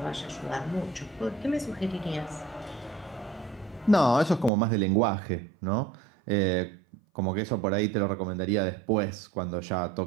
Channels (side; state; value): left; drops out; at 4.5 s